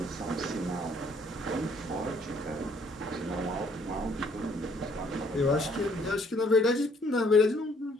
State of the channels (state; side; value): normal; both; correlation 0.63